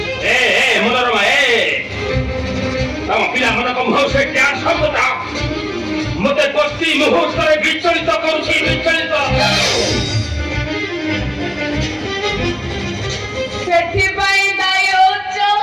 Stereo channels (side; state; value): both; identical; correlation 1.00